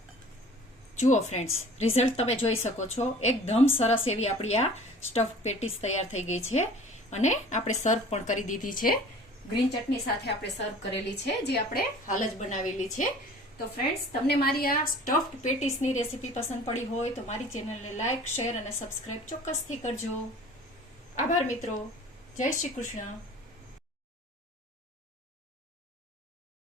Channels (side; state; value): both; normal; correlation 0.46